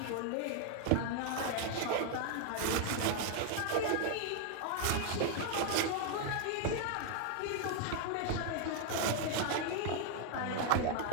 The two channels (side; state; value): both; different; correlation 0.00